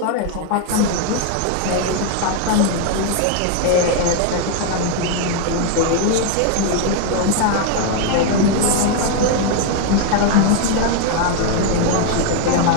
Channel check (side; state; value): both; different; correlation 0.01